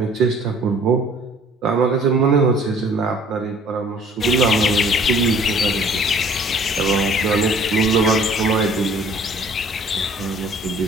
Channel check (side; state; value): both; normal; correlation 0.54